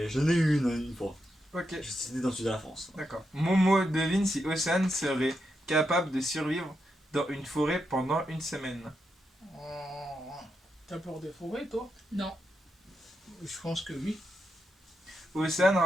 j'en ai eu une fois. Ok, C'était dans le sud de la France. d'accord. Momo devine si Océane serait capable de survivre dans une forêt pendant une semaine. Oh. T'as peur des forêts, toi? Non. Je pense que oui. Océane,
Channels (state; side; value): normal; both; correlation 0.84